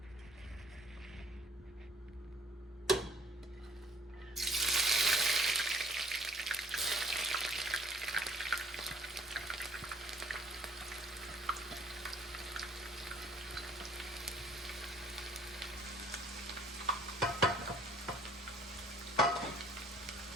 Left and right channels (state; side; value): normal; both; correlation 0.57